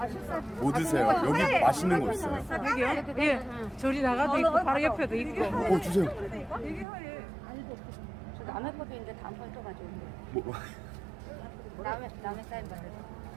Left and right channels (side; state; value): left; drops out; at 6.9 s